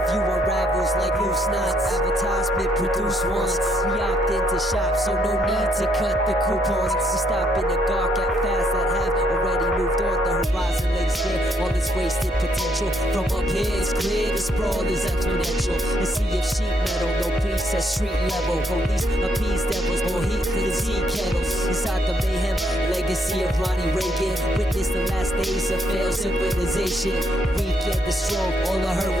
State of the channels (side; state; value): both; normal; correlation 0.72